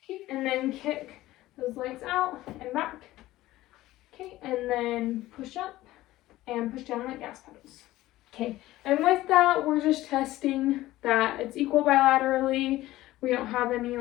Okay, and then kick those legs out and back. Okay, and then push up and push down like gas pedals. Okay, and with that, we're just testing that it's equal bilaterally. We don't have any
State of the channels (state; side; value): quieter; right; 16.4 dB